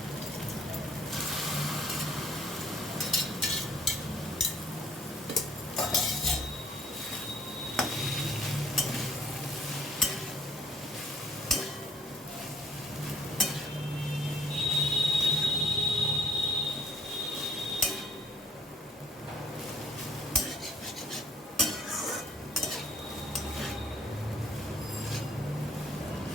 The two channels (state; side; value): normal; both; correlation 0.58